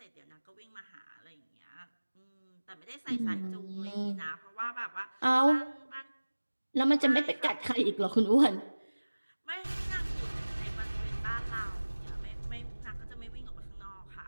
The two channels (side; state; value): both; inverted; correlation -1.00